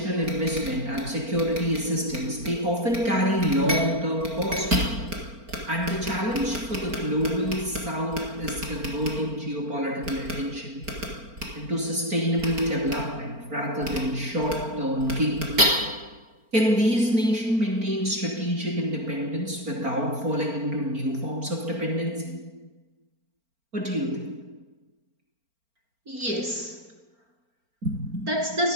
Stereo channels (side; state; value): left; late; 4.4 ms